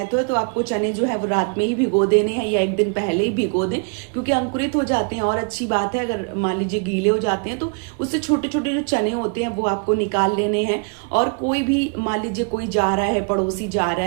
है, तो आपको चने जो है वो रात में ही भिगो देने हैं या एक दिन पहले ही भिगो दें, क्योंकि अंकुरित हो जाते हैं। और अच्छी बात है, अगर मान लीजिए गीले हो जाते हैं तो उससे छोटे छोटे जो चने होते हैं वो आपको निकाल लेने हैं। और कोई भी मान लीजिए कोई जा रहा है, पड़ोसी जा रहा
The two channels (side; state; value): left; quieter; 38.3 dB